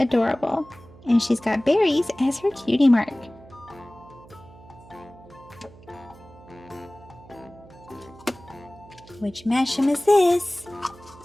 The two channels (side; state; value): right; noise; hum, 22 dB below the sound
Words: And she's got berries as her cutie mark. Which mashem is this?